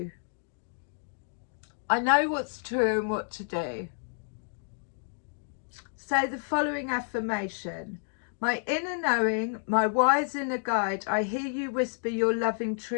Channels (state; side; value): silent; right; digital silence